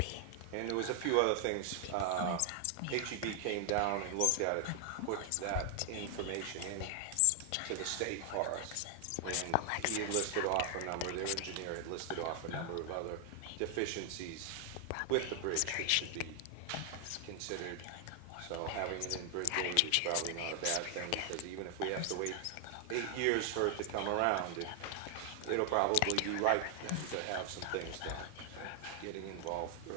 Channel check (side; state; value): both; different; correlation 0.00